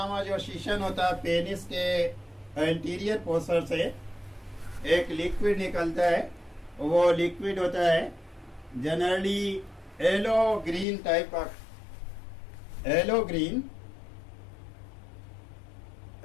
जो शीशन होता है, पेनिस के एंटीरियर पोर्शन से एक लिक्विड निकलता है, वो लिक्विड होता है जनरली येलो ग्रीन टाइप का, yellow green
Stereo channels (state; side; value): drops out; right; at 10.9 s